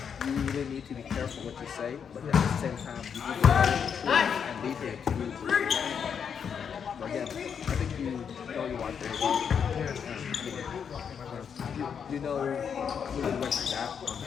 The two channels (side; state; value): right; quieter; 7.2 dB